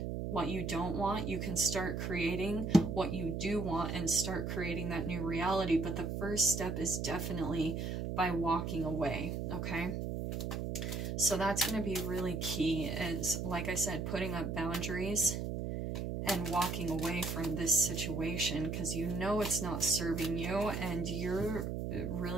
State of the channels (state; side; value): noise; right; hum, 3 dB below the sound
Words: what you don't want, you can start creating what you do want and start creating that new reality. But the first step is definitely by walking away, okay? So that's going to be really key, is, like I said, putting up boundaries and walking away from this situation, because you know it's not serving you, and you're